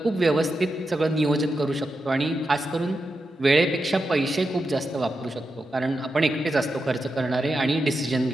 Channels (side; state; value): both; normal; correlation 0.88